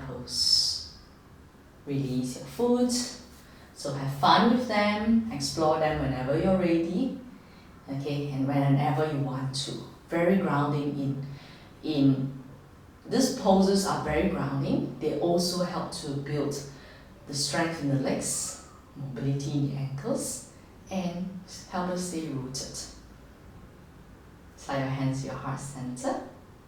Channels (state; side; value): identical; both; correlation 1.00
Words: Release your foot. So have fun with them, explore them whenever you're ready. Okay, and whenever you want to. Very grounding in these poses are very grounding. They also help to build the strength in the legs, mobility in the ankles, and help us stay rooted. Slide your hands to your heart center.